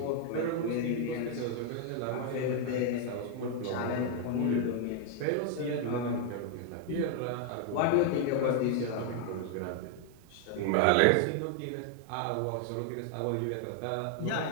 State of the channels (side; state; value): both; different; correlation 0.00